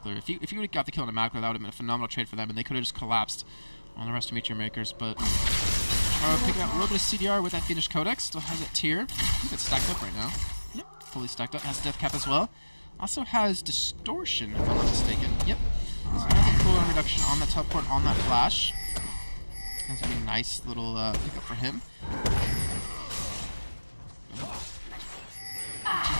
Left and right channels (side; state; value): both; inverted; correlation -1.00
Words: If he would have got the kill on Mackler, that would have been a phenomenal trade for them, and they could have just collapsed on the rest of Meteor Makers. But picking up a little bit of CDR with that Fiendish Codex. Still has it tier. I think it's stacked up right now. Yep, fully stacked up. Has Death Cap as well. Also has Distortion, if I'm not mistaken. Yep. So it has a cooldown reduction on that teleport, on that flash. That's a really nice little pickup for him. To